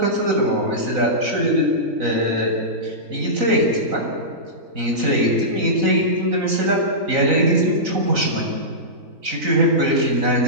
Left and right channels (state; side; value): late; left; 4.0 ms